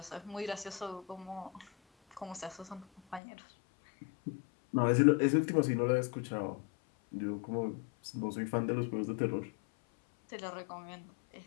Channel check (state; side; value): drops out; right; at 3.2 s